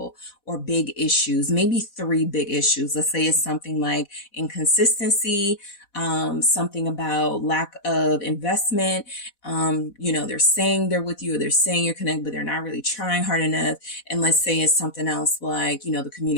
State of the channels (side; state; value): right; late; 4.1 ms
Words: or big issues, maybe 3 big issues. Let's say it's something like inconsistency, something about lack of investment. You know, they're saying they're with you, or they're saying you're connected, but they're not really trying hard enough. And let's say it's something else like, you know, the